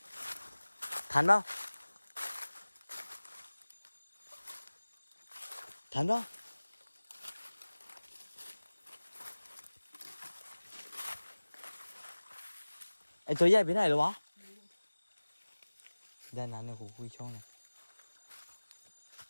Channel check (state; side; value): inverted; both; correlation -1.00